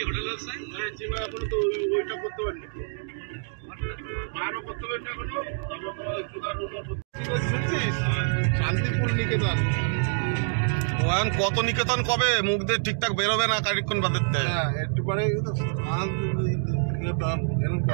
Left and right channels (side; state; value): left; silent; digital silence